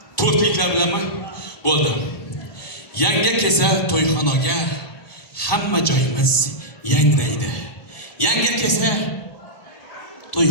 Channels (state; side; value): late; right; 1.7 ms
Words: To'rtliklar bilanmi? Bo'ldi. Yangi kelsa to'yxonaga hamma joyimiz yangraydi. Yangi kelsa